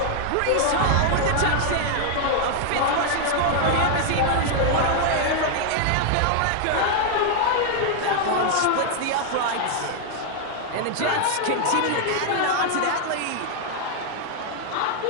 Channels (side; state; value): both; different; correlation 0.00